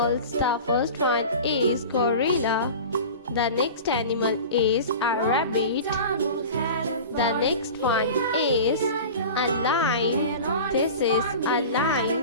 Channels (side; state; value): both; inverted; correlation -0.35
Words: The first one is gorilla. The next animal is a rabbit. The next one is a lion. This is a